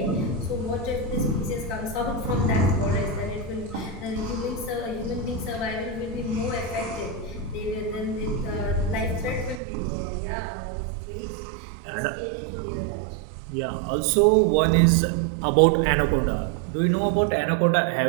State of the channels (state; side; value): drops out; left; at 9.6 s